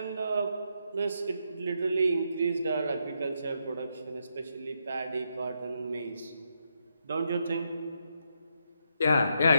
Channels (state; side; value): inverted; both; correlation -0.80